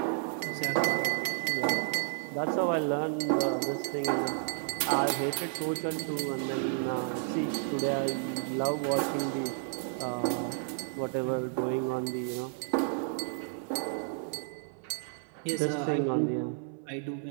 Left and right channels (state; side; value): silent; left; 57 dB below the other